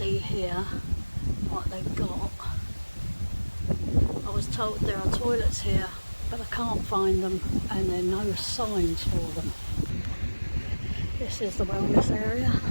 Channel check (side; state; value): both; inverted; correlation -1.00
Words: here what they've got. I was told there are toilets here, but I can't find them, and there are no signs for them. This is the wellness area.